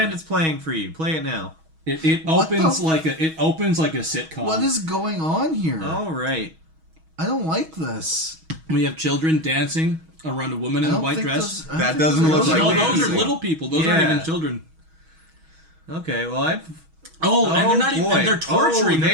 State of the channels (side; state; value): left; late; 6.3 ms